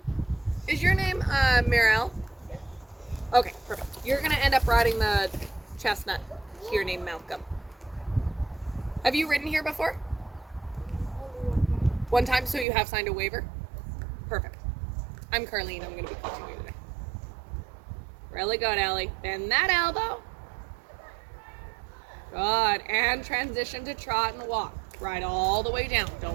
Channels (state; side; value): drops out; left; at 12.7 s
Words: Is your name Mirel? Okay, perfect. You're going to end up riding the chestnut here named Malcolm. Have you ridden here before? One time, so you have signed a waiver? Perfect. I'm Carlene. I'm going to be coaching you today. Really good, Ellie. Bend that elbow. Good. And transition to trot and walk. Ride all the way down.